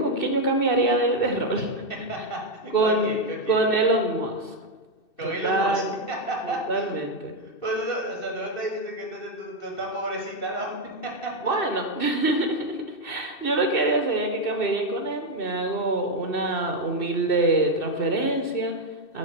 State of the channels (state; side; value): late; right; 2.6 ms